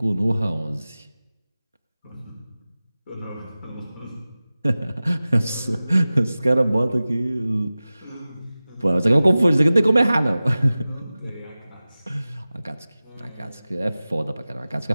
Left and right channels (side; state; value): both; inverted; correlation -0.97